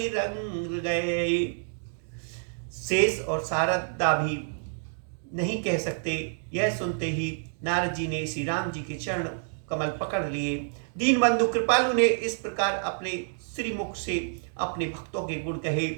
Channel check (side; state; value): left; silent; digital silence